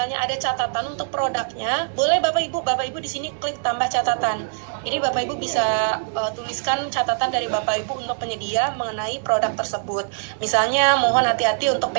ada catatan untuk produknya, boleh Bapak Ibu di sini klik tambah catatan. Jadi Bapak Ibu bisa tuliskan catatan dari Bapak Ibu untuk penyedia mengenai produk tersebut. Misalnya mohon hati-hati untuk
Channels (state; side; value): silent; left; digital silence